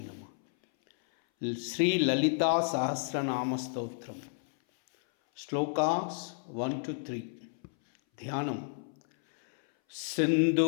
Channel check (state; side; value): silent; right; 57 dB below the other